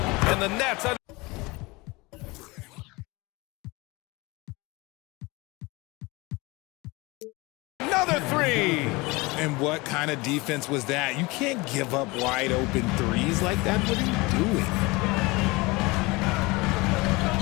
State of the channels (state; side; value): quieter; right; 23.9 dB